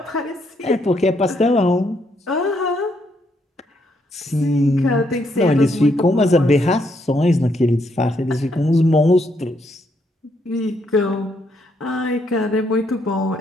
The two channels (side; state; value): both; normal; correlation 0.74